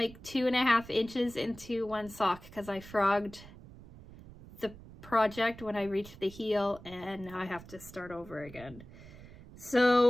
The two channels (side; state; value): right; noise; rumble, 18 dB below the sound